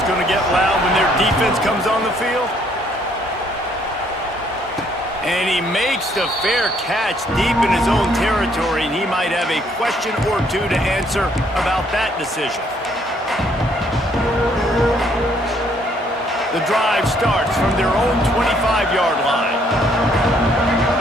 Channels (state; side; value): normal; both; correlation 0.66